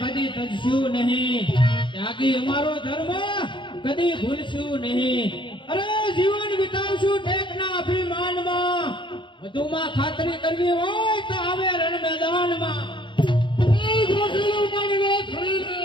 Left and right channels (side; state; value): right; late; 0.23 ms